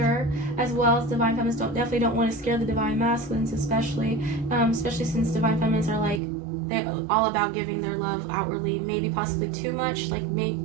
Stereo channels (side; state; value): left; drops out; at 6.2 s